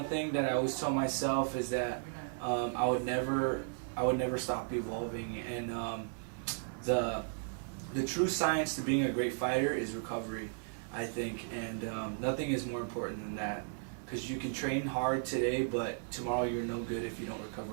thing that I always tell myself is that I would never stop evolving. And the true science to being a great fighter is recovery, I think. And nothing is more important than that. Because you can train hard today, but tomorrow you're no good if you don't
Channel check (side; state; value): left; silent; digital silence